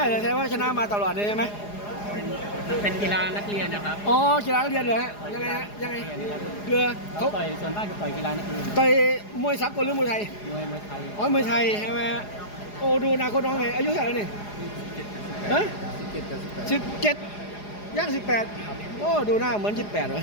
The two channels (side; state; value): right; late; 4.9 ms